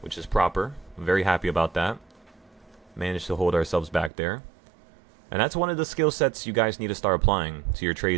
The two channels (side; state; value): left; drops out; at 4.1 s